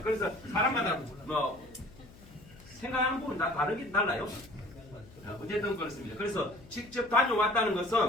그래서 사람마다 뭐 생각하는 부분이 다 달라요. 어쨌든 그렇습니다. 그래서 직접 다녀왔다는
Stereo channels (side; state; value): left; noise; hum, 22 dB below the sound